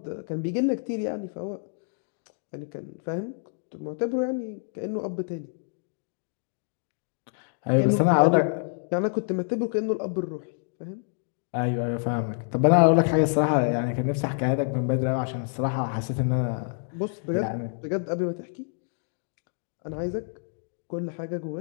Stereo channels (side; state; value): right; silent; 58 dB below the other